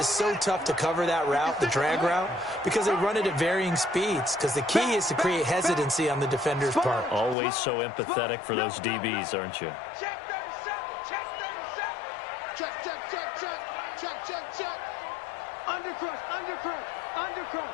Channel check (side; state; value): right; drops out; at 7.4 s